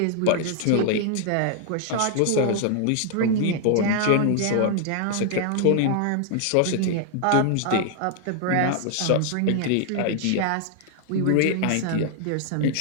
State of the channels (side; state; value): both; different; correlation 0.00